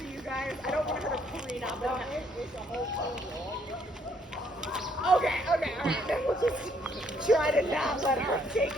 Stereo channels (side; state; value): both; normal; correlation 0.68